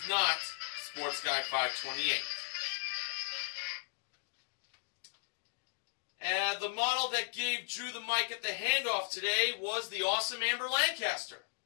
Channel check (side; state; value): right; silent; digital silence